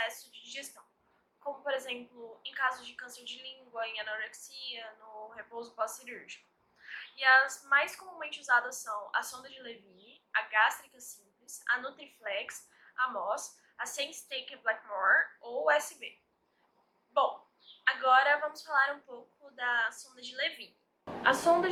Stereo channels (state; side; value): identical; both; correlation 1.00